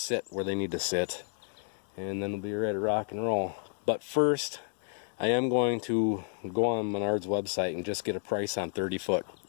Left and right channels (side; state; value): right; silent; 57 dB below the other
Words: where they need to sit, and then we'll be ready to rock and roll. But first, I am going to go on Menard's website and just get a price on 30-foot